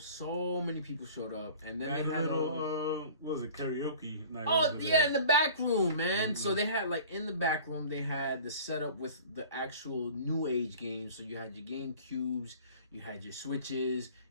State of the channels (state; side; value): inverted; both; correlation -0.44